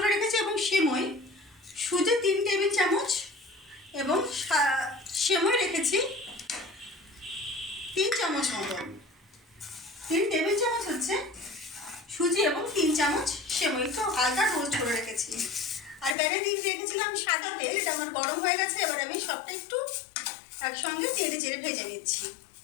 রেখেছি এবং সেমই, সুজি 3 টেবিল চামচ এবং সেমই রেখেছি 3 চামচ মতন। 3 টেবিল চামচ হচ্ছে সুজি এবং 3 চামচ সেমই, একটু হালকা রোস্ট করে রেখেছি। আর প্যানে দিয়ে রেখেছিলাম সাদা তেল, এটা আমার গরম হয়ে গেছে। এবার আমি সবটা একটু একসঙ্গে চেড়ে চেড়ে ভেজে নিচ্ছি।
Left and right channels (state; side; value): drops out; right; at 16.2 s